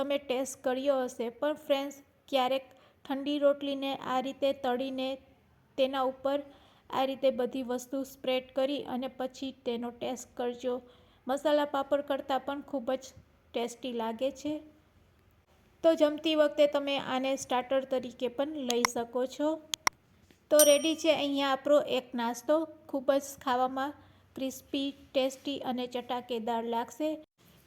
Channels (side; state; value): both; identical; correlation 1.00